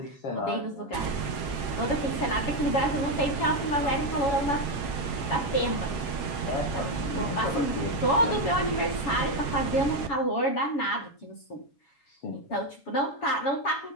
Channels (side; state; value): right; late; 7.0 ms